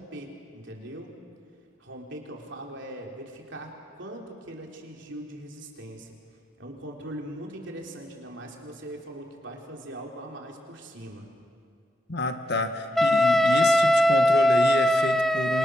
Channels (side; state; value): both; normal; correlation 0.84